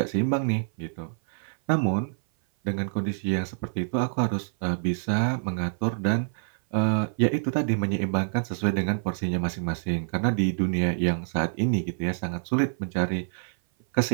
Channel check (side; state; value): left; silent; 57 dB below the other